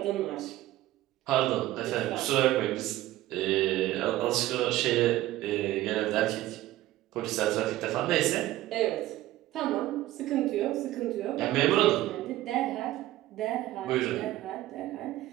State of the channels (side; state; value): left; quieter; 15.6 dB